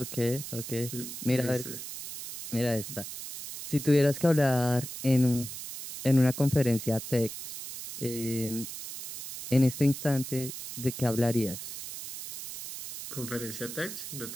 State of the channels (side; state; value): right; noise; hiss, 9 dB below the sound